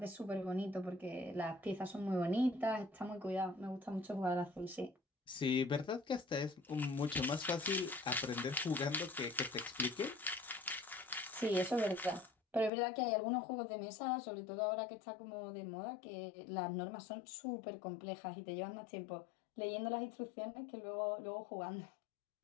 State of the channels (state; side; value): drops out; right; at 12.7 s